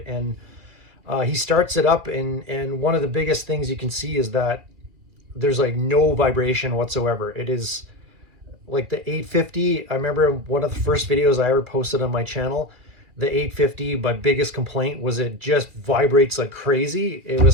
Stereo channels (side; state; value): left; late; 2.3 ms